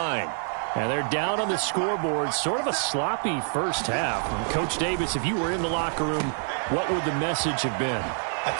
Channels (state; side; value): silent; left; 61 dB below the other